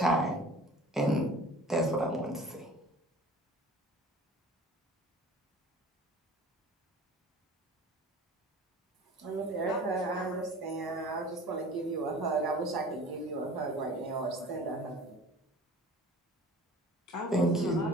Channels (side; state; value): both; normal; correlation 0.44